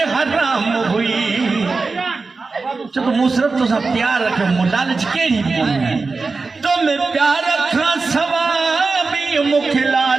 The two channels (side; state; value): left; quieter; 4.1 dB